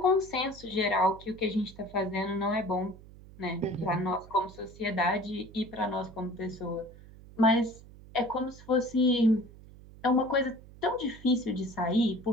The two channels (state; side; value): noise; right; hum, 20 dB below the sound